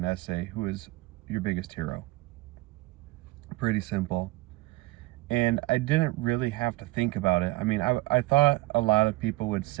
essay, who is your biggest hero? Pretty simple. And I didn't really have to think about it. I mean, I thought a lot of people would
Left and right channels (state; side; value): quieter; left; 19.9 dB